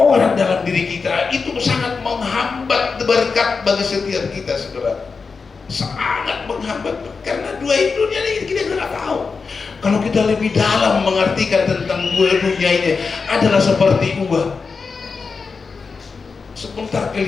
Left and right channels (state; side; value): quieter; right; 4.9 dB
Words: dalam diri kita. Itu sangat menghambat berkat bagi setiap kita, saudara. Sangat menghambat, karena dua dunia ini kita nggak tahu. Kalau kita lebih dalam mengartikan tentang dua dunia ini, adalah seperti uang. Sebentar